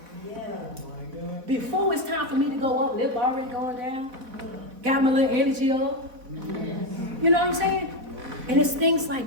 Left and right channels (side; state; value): left; late; 4.1 ms